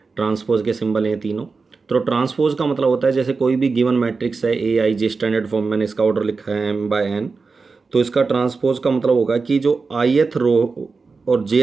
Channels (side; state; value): left; quieter; 4.4 dB